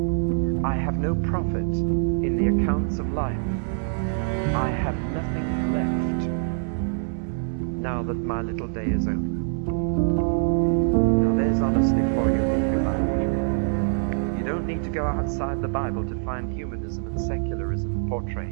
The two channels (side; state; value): left; silent; digital silence